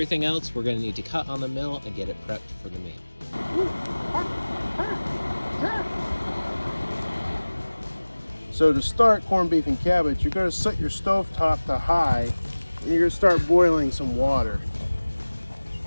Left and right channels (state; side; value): inverted; both; correlation -1.00